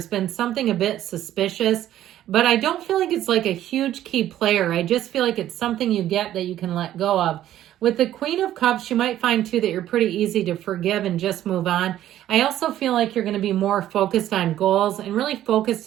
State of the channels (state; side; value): quieter; left; 12.5 dB